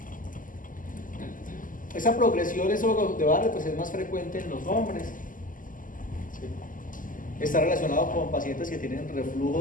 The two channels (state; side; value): late; right; 0.39 ms